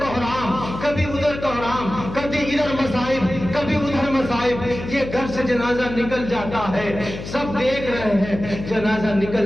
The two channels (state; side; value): noise; left; hum, 10 dB below the sound